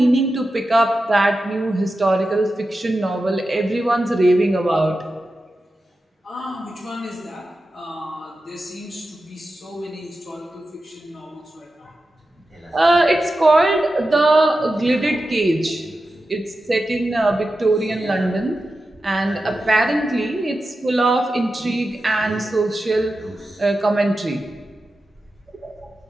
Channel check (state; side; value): normal; both; correlation 0.92